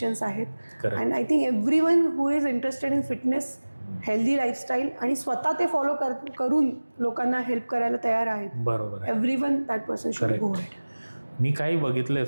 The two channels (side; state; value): both; inverted; correlation -1.00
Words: आहेत. And I think everyone who is interested in fitness, healthy lifestyle आणि स्वतः ते फॉलो करून लोकांना हेल्प करायला तयार आहेत. बरोबर. Everyone that person should go ahead. मी काही बघितलंय